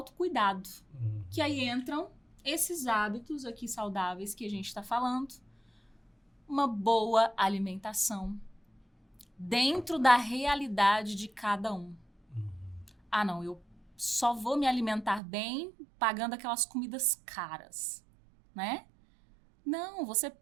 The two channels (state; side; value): drops out; left; at 15.2 s